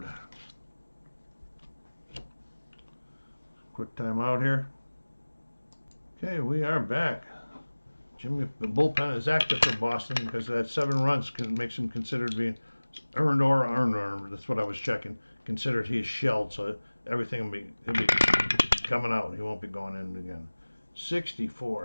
Quick time out here. Okay, we are back. Jimmy, the bullpen is active for Boston because that 7 runs makes him considered being earned, that's what I was checking. Considered he's shelled, so everything he'll be coming out. He won't be going in again.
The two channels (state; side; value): inverted; both; correlation -1.00